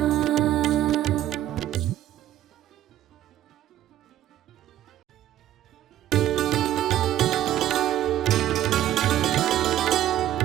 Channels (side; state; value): left; quieter; 12.5 dB